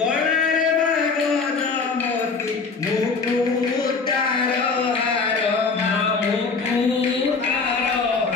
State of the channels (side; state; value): right; quieter; 4.6 dB